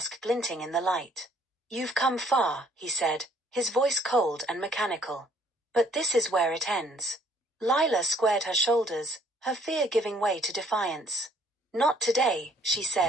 glinting in the light. "You've come far," he said, his voice cold and mechanical. "But this is where it ends." Lila squared her shoulders, her fear giving way to defiance. "Not today," she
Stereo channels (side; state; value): both; normal; correlation 0.62